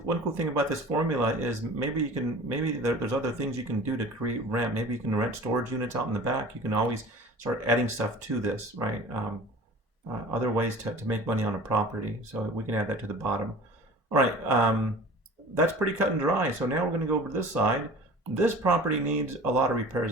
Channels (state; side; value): normal; both; correlation 0.42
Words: thing about this formula is maybe there's other things you can do to create rent. Maybe you can rent storage units out in the back. You can always start adding stuff to this, right? Other ways to make money on a property. So we can add that to the bottom. All right, that's pretty cut and dry. So now we're going to go over to this side. This property needs a lot of repairs